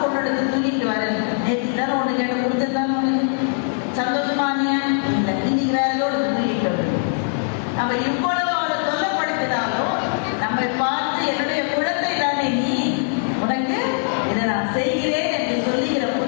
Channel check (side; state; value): right; silent; digital silence